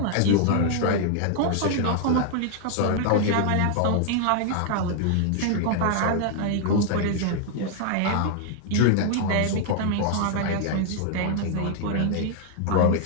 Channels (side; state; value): both; different; correlation 0.00